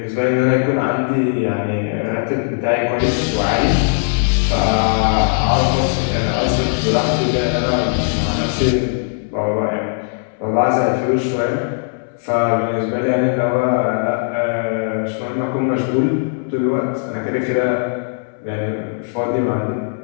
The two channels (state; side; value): silent; right; 67 dB below the other